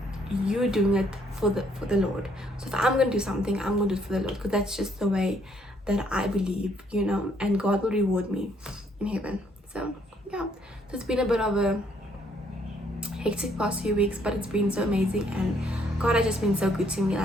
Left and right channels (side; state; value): both; normal; correlation 0.68